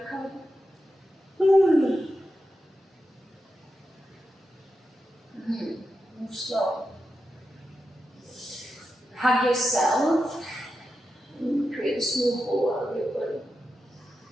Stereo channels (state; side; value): normal; both; correlation 0.89